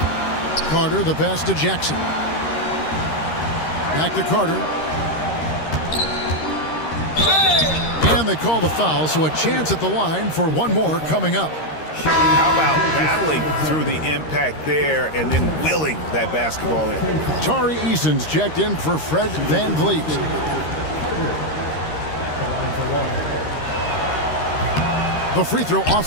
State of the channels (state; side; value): late; right; 13 ms